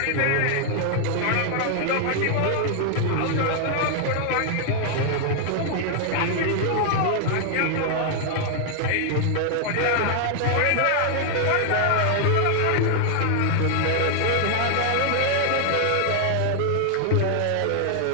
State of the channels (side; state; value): both; different; correlation 0.00